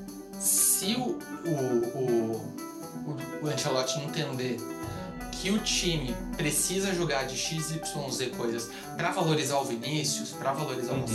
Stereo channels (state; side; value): identical; both; correlation 1.00